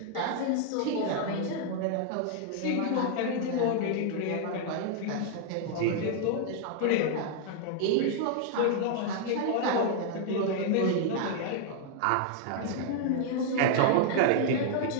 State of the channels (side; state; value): both; different; correlation 0.00